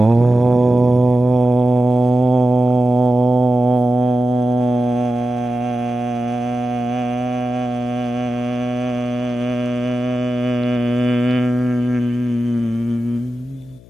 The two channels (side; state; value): left; noise; hum, 24 dB below the sound